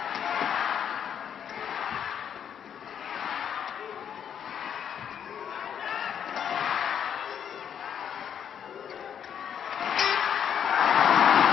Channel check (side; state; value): right; quieter; 8.6 dB